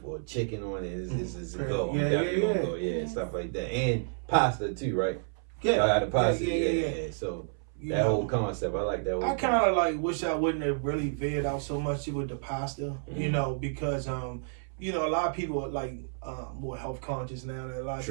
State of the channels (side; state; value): left; silent; 58 dB below the other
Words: or chicken on it is a go. I'm definitely gonna go, stuff like that. And pasta too, right? Yeah. I got the pasta, So that whole concept, I like that. I kind of like wish I wouldn't have really veered out so much with the pasta, because a lot of people are like more health conscious now. That a lot of